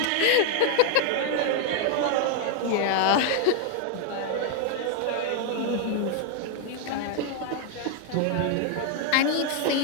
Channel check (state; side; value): different; both; correlation 0.00